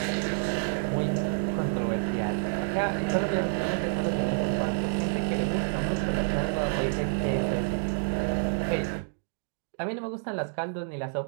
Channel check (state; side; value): silent; left; digital silence